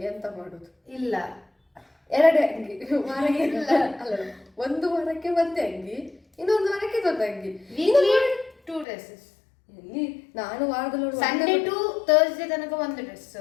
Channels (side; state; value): right; drops out; at 8.8 s